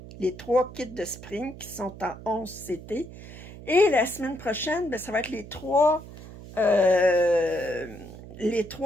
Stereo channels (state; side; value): noise; right; hum, 15 dB below the sound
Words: kits de Spring qui sont en 11 CT. Et la semaine prochaine, ben, ça va être les 3